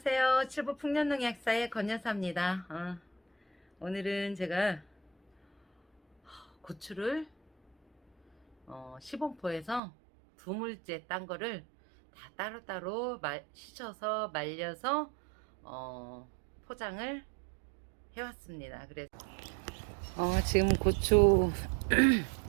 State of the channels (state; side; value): drops out; left; at 9.8 s